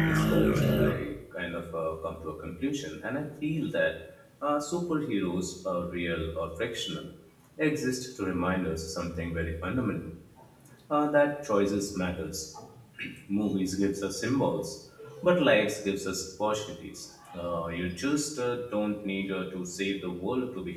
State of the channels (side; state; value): both; identical; correlation 1.00